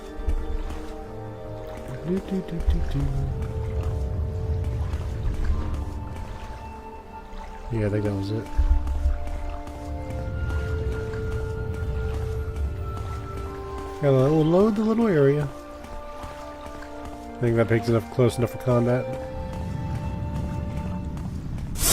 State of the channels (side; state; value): both; identical; correlation 1.00